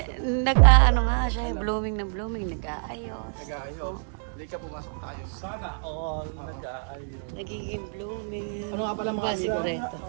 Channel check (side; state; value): left; silent; digital silence